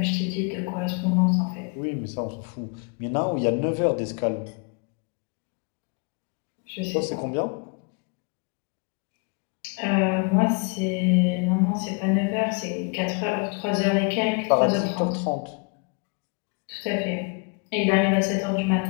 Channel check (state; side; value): quieter; right; 34.0 dB